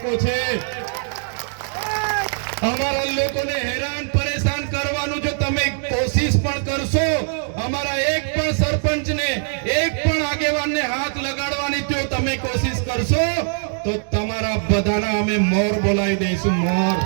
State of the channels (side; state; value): left; silent; 65 dB below the other